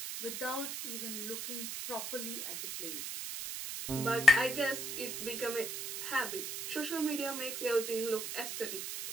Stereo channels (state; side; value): noise; right; hiss, 5 dB below the sound